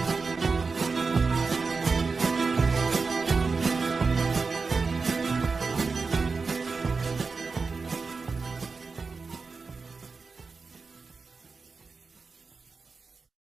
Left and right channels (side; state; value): left; quieter; 4.5 dB